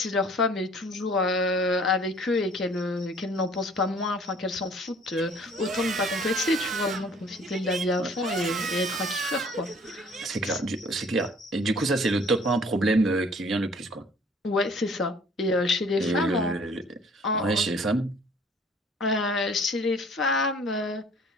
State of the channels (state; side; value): normal; both; correlation 0.54